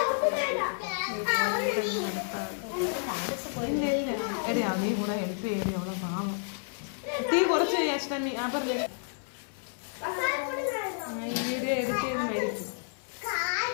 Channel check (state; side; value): silent; right; 58 dB below the other